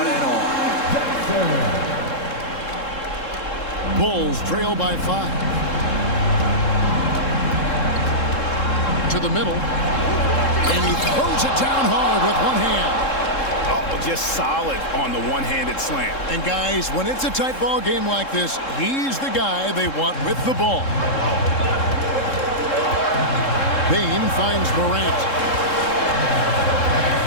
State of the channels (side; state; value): right; late; 3.7 ms